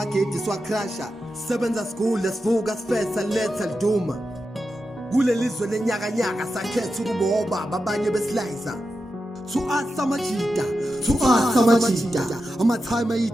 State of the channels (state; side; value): normal; both; correlation 0.90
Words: siwacrasha sebenza school sivuka sifesa letha liduma kulelizwe lenyaka nyaka sakhetha ukuba obaba abanye beslicer Samajita, amathime